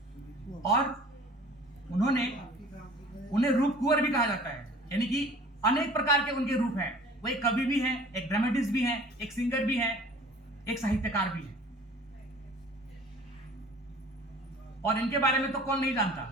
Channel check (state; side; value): normal; both; correlation 0.48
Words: और उन्हें रूप कुंवर भी कहा जाता है, यानी कि अनेक प्रकार के उनके रूप हैं। वो एक कवि भी हैं, एक ड्रामेटिस्ट भी हैं, एक सिंगर भी हैं, एक साहित्यकार भी हैं। और इनके बारे में तो कौन नहीं